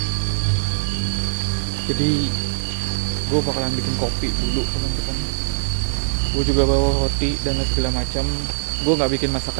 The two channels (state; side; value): silent; left; 62 dB below the other